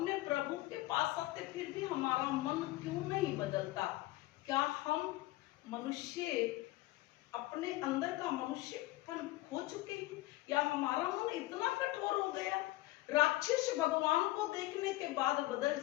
प्रभु के पास आते, फिर भी हमारा मन क्यों नहीं बदलता? क्या हम मनुष्य अपने अंदर का मनुष्यपन खो चुके हैं, या हमारा मन इतना कठोर हो गया? राक्षस भगवान को देखने के बाद बदल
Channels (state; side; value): quieter; right; 18.2 dB